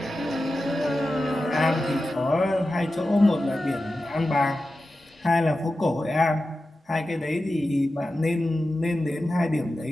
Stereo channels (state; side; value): normal; both; correlation 0.93